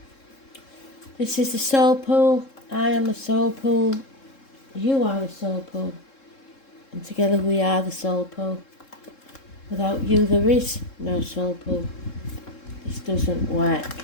This is the Soul Pool. I am the Soul Pool. You are the Soul Pool. And together we are the Soul Pool. Without you there is no Soul Pool. This doesn't work.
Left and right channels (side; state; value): right; late; 3.7 ms